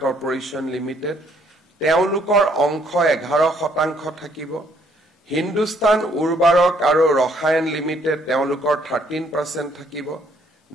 corporation limited তেওঁলোকৰ অংশ 11% থাকিব হিন্দুস্তান উৰ্বাৰক আৰু ৰসায়ন লিমিটেড তেওঁলোকৰ 13% থাকিব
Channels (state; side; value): normal; both; correlation 0.66